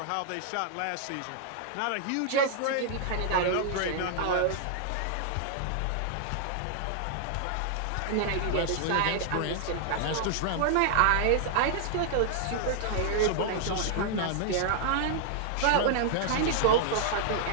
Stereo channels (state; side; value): different; both; correlation -0.01